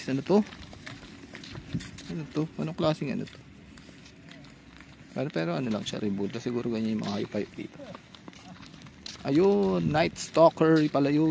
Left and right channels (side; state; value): both; identical; correlation 1.00